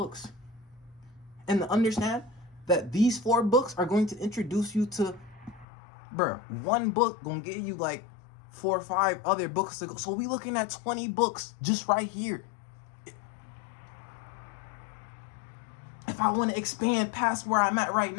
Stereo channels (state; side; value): drops out; right; at 5.7 s